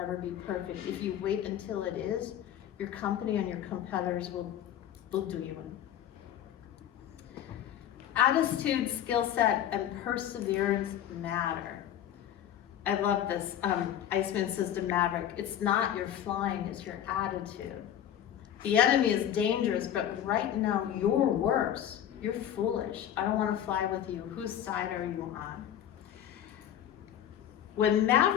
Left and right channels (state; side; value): quieter; right; 10.6 dB